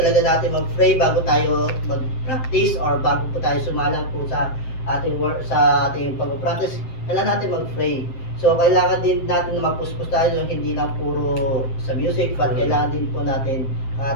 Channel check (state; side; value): late; right; 7.7 ms